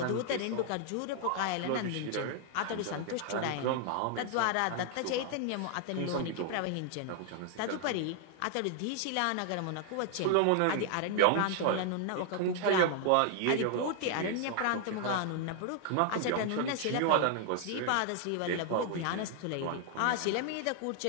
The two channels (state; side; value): different; both; correlation 0.00